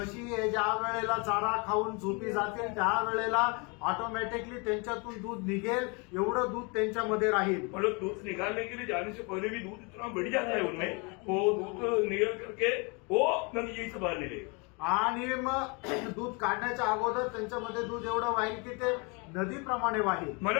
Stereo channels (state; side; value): quieter; right; 31.4 dB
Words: हे ज्या वेळेला चारा खाऊन झोपी जातील त्या वेळेला ऑटोमॅटिकली त्यांच्यातून दूध निघेल, एवढं दूध त्यांच्यामध्ये राहील. मतलब दूध निकालने के लिए जाने से पहले भी दूध इतना बढ़ जाता है उनमें, वो दूध निकल करके वो यही से बाहर निकलेगा. आणि मग दूध काढण्याच्या अगोदर त्यांच्यामध्ये दूध एवढं वाहील की ते नदीप्रमाणे वाहील.